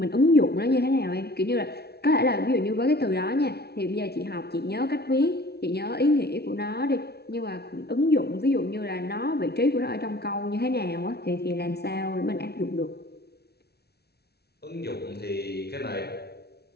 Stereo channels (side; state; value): right; late; 0.47 ms